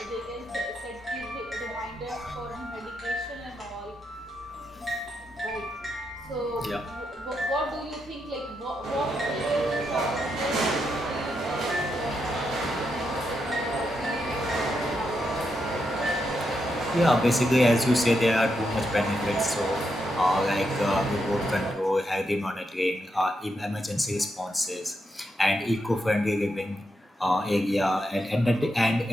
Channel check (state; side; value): normal; both; correlation 0.83